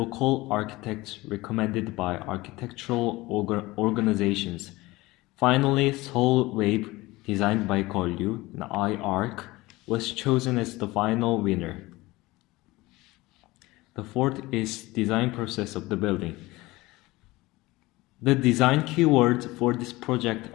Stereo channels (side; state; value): right; quieter; 20.3 dB